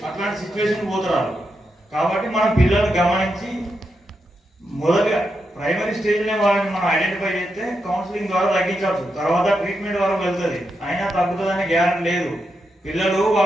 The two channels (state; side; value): normal; both; correlation 0.85